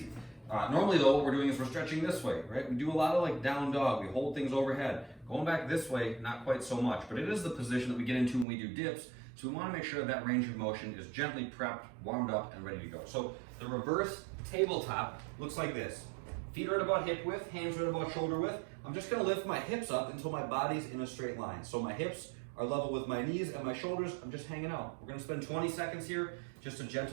Normally though, what we're doing is we're stretching this way, right? We do a lot of like down dog, we hold things overhead. Going back this way, not quite so much, but it is the position that we get into when we do dips, so we want to make sure that range of motion is gently prepped, warmed up, and ready to go. So the reverse tabletop looks like this. Feet are at about hip width, hands are at about shoulder width. I'm just gonna lift my hips up until my body's in a straight line. So my hips are level with my knees and my shoulders. I'm just hanging out. We're gonna spend 20 seconds here, just a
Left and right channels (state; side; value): drops out; left; at 8.5 s